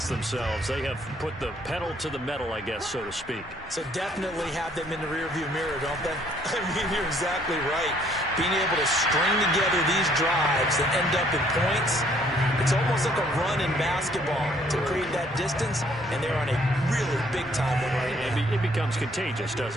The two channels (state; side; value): normal; both; correlation 0.63